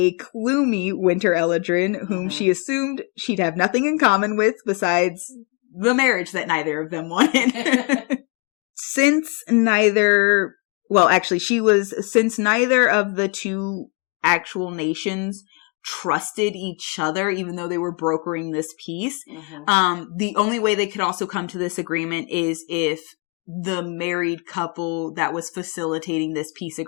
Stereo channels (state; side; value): quieter; right; 32.9 dB